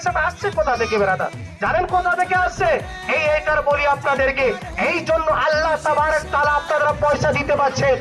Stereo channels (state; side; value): identical; both; correlation 1.00